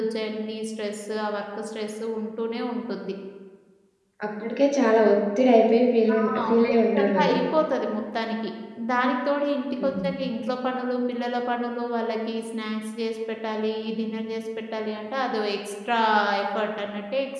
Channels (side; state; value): both; identical; correlation 1.00